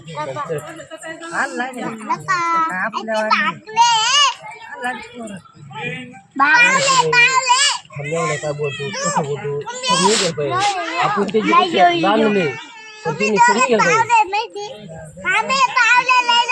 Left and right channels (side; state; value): both; identical; correlation 1.00